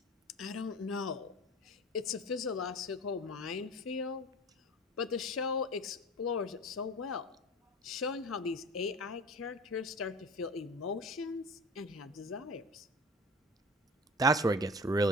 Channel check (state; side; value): normal; both; correlation 0.37